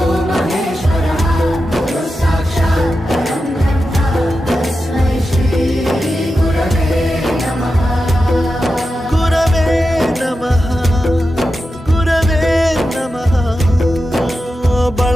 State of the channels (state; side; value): normal; both; correlation 0.91